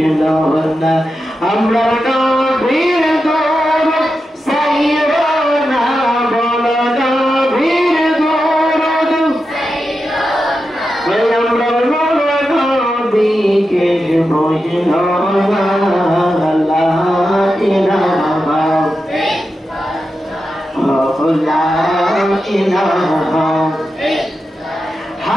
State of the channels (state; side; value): normal; both; correlation 0.89